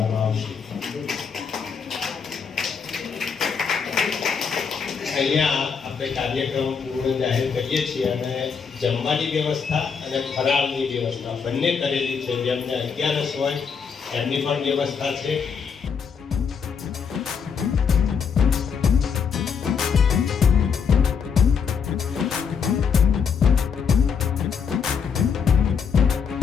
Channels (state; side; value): quieter; right; 6.3 dB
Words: આવશે. અહીંયા આપણે કાર્યક્રમ પૂર્ણ જાહેર કરીએ છીએ અને જમવાની વ્યવસ્થા અને ફરાળની વ્યવસ્થા બંને કરેલી છે. જેમને 11 હોય એમની પણ વ્યવસ્થા છે.